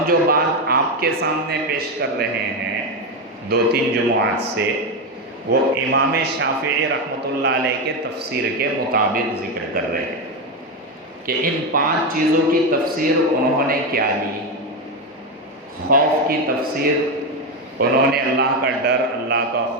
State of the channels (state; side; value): normal; both; correlation 0.11